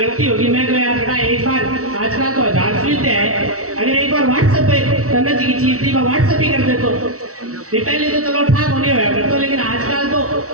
होगी। मैं तो यार बेटा एक बार आजकल तो 1000 सुविधा है, अगर एक बार व्हाट्सएप पे तन्ना जी की चीज थी मैं व्हाट्सएप ही कर देता ये पहले तो चलो ठाक होने होया करते, लेकिन आजकल तो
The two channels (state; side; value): late; left; 0.65 ms